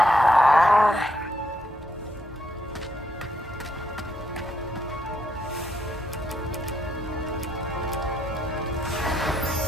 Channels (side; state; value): both; normal; correlation 0.76